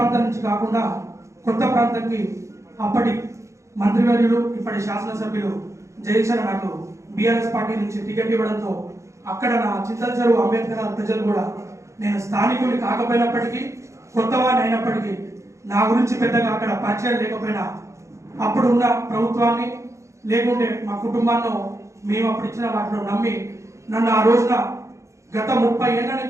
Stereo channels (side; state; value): left; late; 0.14 ms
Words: నుంచి కాకుండా కొత్త ప్రాంతానికి అప్పటి మంత్రివర్యులు, ఇప్పటి శాసనసభ్యులు జయచర నాకు బీఆర్ఎస్ పార్టీ నుంచి టికెట్ ఇవ్వడంతో అక్కడ నా చింతలచెరువు అంబేద్కర్ ప్రజలు కూడా నేను స్థానికుని కాకపోయినప్పటికీ, కొత్తవాడిని అయినప్పటికీ నా గురించి పెద్దగా అక్కడ పరిచయం లేకపోయినా అప్పుడు ఉన్న ప్రభుత్వాన్ని లేకుంటే మా కుటుంబాన్ని మేము అప్పుడు ఇచ్చిన వాటిలో నమ్మి నన్ను ఆ రోజున గత 30 ఏళ్ల